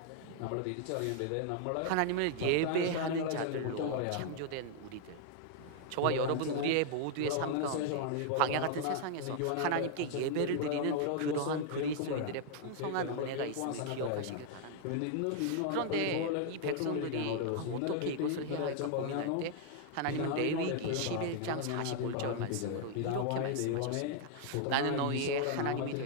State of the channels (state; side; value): different; both; correlation 0.00